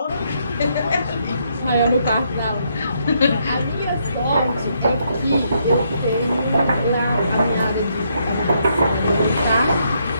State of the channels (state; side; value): inverted; both; correlation -0.74